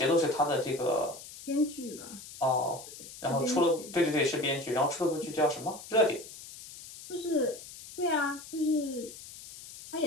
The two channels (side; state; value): left; noise; hiss, 15 dB below the sound